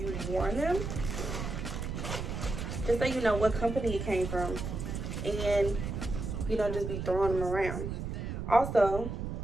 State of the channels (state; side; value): noise; right; rumble, 4 dB below the sound